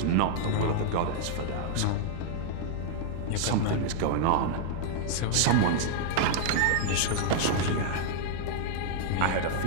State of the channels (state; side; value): different; both; correlation -0.01